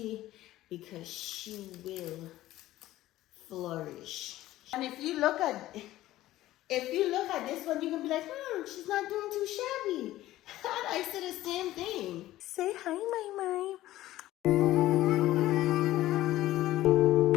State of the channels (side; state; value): right; quieter; 15.4 dB